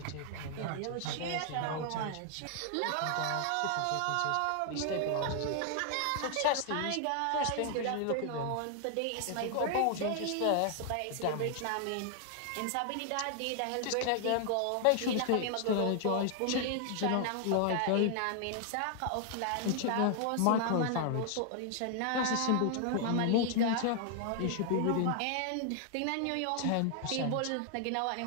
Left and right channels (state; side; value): different; both; correlation 0.00